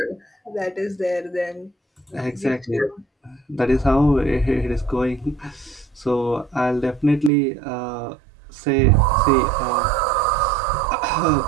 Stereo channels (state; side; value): drops out; left; at 7.3 s